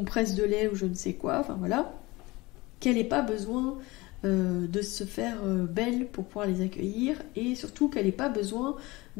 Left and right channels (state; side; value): quieter; right; 21.9 dB